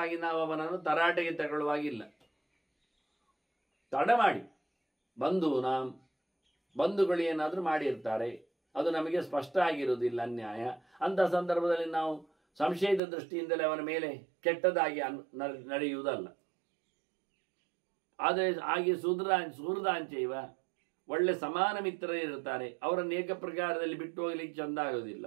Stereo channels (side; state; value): left; drops out; at 13.0 s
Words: ನಾವು ಅವನನ್ನು ತರಾಟೆಗೆ ತಗೊಳ್ಳುವಾಗಿಲ್ಲ. ತಡ ಮಾಡಿ ಬಂಧುಗಳು ಏನಾದರೂ ಮಾಡಿರ್ತಾರೆ, ಅದು ನಮಗೆ ಸ್ಪಷ್ಟ ಆಗಿರುವುದಿಲ್ಲ ಅನ್ಯಾಯ. ಅಂತ ಸಂದರ್ಭದಲ್ಲಿ ನಾವು ಸಂಶಯದ ದೃಷ್ಟಿಯಿಂದಲೇ ಅವನ ಮೇಲೆ ಕೆಟ್ಟದಾಗಿ ನಡೆಯುವುದಲ್ಲ. ಆದರೆ ಹಾಗೆ ಸುಹೃದಾಂಚೈವ ಒಳ್ಳೆ ಸಮಾನ ಮಿತ್ರರೇ ಇರ್ತಾರೆ, ಅವರನ್ನು ಏಕ ಪ್ರಕಾರದಲ್ಲಿ ಬಿಟ್ಟು ಹೋಗ್ಲಿಕ್ಕೆ ಚಂದ ಆಗೋದಿಲ್ಲ.